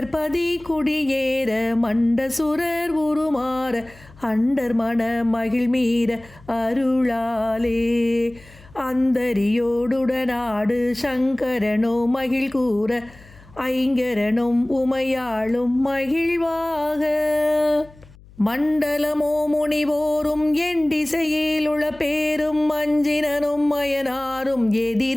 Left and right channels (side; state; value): left; noise; hum, 24 dB below the sound